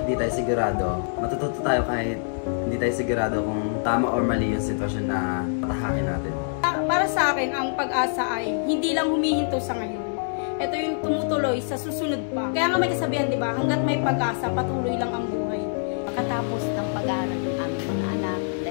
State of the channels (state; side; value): silent; right; 62 dB below the other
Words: di tayo sigurado, matututo tayo kahit hindi tayo sigurado kung tama or mali yung sitwasyon na patahakin natin. Para sa akin, ang pag-asa ay hindi lang humihinto sa ngayon. Ito yung tumutuloy sa susunod pa. Kaya nga may kasabihan, di ba? Hanggat may pag-asa, patuloy lang ang buhay. Pagkatapos ng pag-aaral ng aming mga anak,